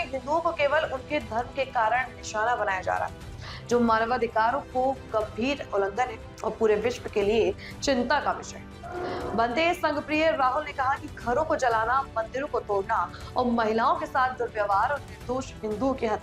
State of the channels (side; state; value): both; identical; correlation 1.00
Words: हिंदुओं को केवल उनके धर्म के कारण निशाना बनाया जा रहा है, जो मानवाधिकारों को गंभीर उल्लंघन है और पूरे विश्व के लिए चिंता का विषय है। भंते संघप्रिय राहुल ने कहा कि घरों को जलाना, मंदिरों को तोड़ना और महिलाओं के साथ दुर्व्यवहार और निर्दोष हिंदुओं की